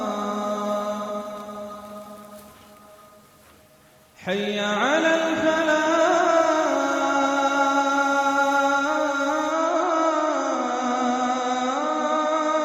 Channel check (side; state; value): both; identical; correlation 1.00